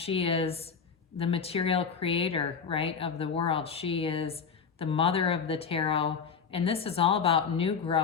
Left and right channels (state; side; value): quieter; right; 6.2 dB